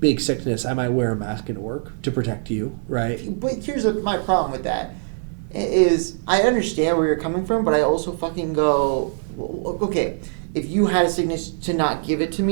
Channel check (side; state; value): left; silent; digital silence